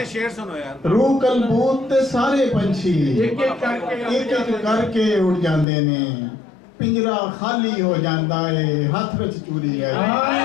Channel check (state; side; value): drops out; right; at 5.7 s